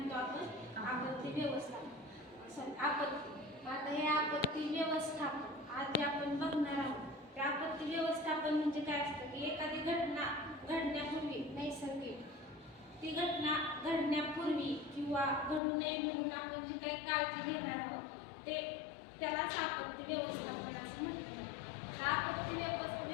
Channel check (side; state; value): right; drops out; at 15.6 s